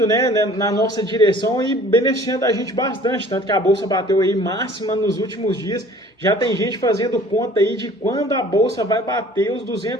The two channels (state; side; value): normal; both; correlation 0.50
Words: né, na nossa direção e beneficiando a gente bastante, tanto que a Bolsa bateu aí máxima nos últimos dias. Já tem gente fazendo conta aí de quando a Bolsa vai bater os